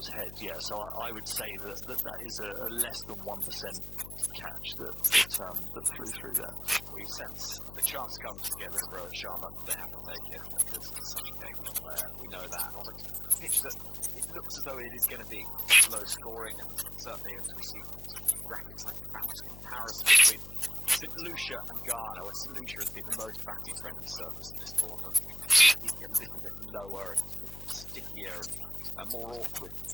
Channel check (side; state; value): left; noise; hum, 13 dB below the sound